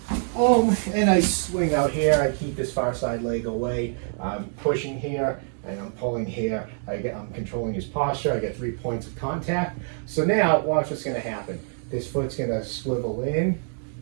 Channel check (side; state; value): left; silent; 61 dB below the other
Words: boom, and I swing out here. I keep this far side leg away. I'm pushing here and I'm pulling here. I'm controlling his posture. I get 3 points of contact. So now watch what's going to happen. This foot's going to swivel in.